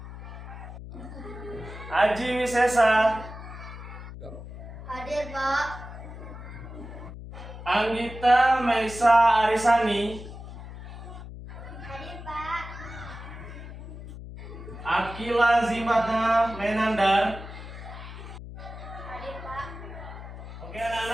Aji Wisesa, Hadir, Pak. Anggita Maisa Arisani, Hadir, Pak. Akila Zimata Menandar. Hadir, Pak. Oke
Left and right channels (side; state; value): left; noise; hum, 12 dB below the sound